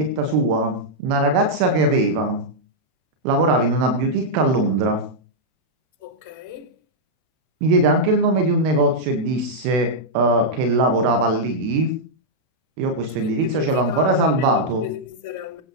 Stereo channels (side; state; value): left; late; 32 ms